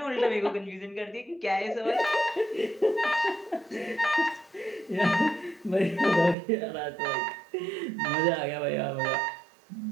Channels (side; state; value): left; drops out; at 6.4 s